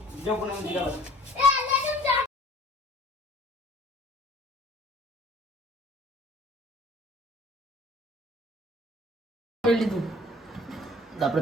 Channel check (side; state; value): both; normal; correlation 0.51